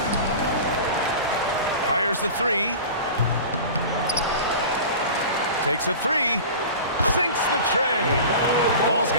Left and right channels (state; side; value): inverted; both; correlation -0.35